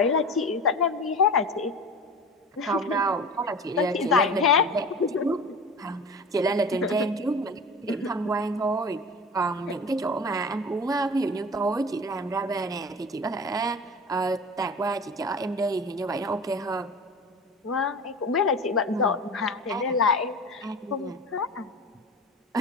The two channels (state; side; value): normal; both; correlation 0.34